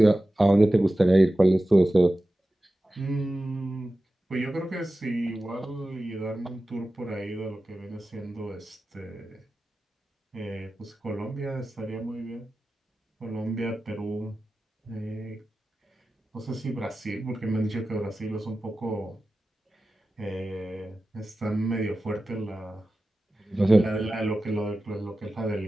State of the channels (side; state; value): both; normal; correlation 0.94